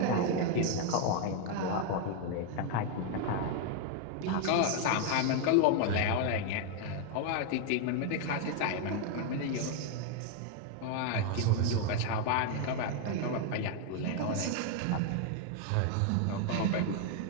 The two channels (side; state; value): both; different; correlation 0.00